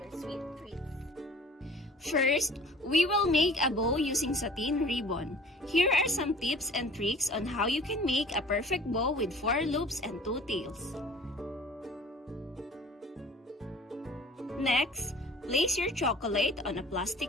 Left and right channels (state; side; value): normal; both; correlation 0.47